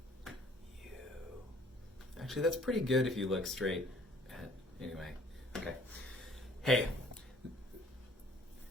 You. Actually, that's pretty good if you look straight at. Anyway, okay. Hey.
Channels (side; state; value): both; normal; correlation 0.56